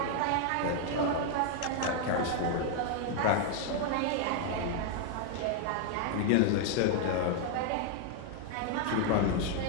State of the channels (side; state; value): both; different; correlation 0.00